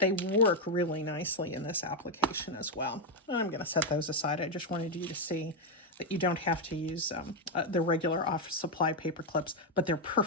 work really nicely in this application as well. I'm going to set those aside. I just wanted you to see that you don't have to use the regular office supply paper clips, but they're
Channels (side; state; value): both; normal; correlation 0.03